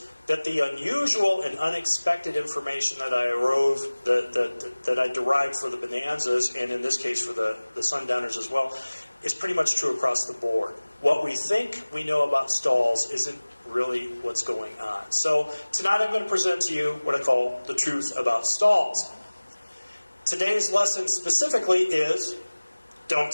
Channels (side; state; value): both; inverted; correlation -1.00